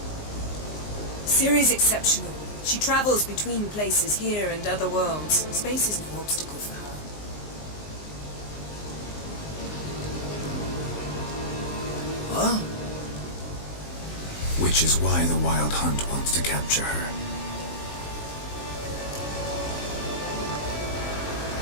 Ciri's exceptional. She travels between places here and other worlds. Space is no obstacle for her. Huh? Which is why the Wild Hunt wants to capture her.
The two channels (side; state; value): right; late; 20 ms